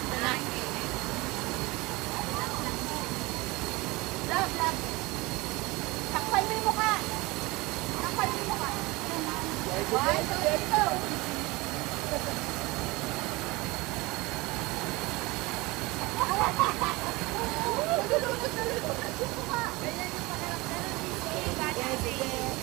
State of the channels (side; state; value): left; quieter; 22.8 dB